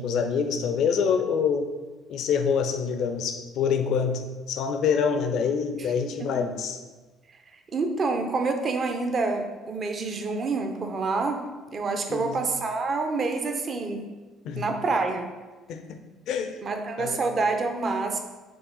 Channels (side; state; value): both; normal; correlation 0.60